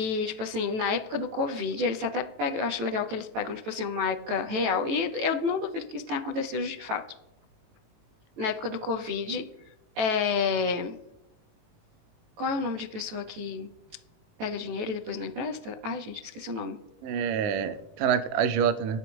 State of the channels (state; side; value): late; left; 18 ms